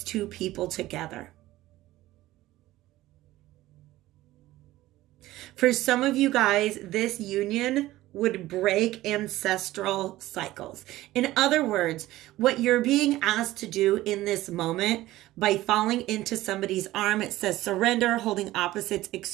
two people together. For some of you guys, this union would break ancestral cycles. In other words, what you're being asked to do in this moment by falling into somebody's arm, it says surrender, holding opposites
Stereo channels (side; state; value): left; quieter; 16.4 dB